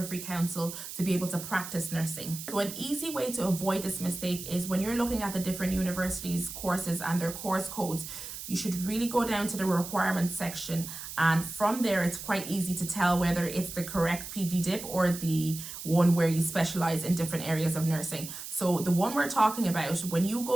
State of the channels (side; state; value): right; noise; hiss, 10 dB below the sound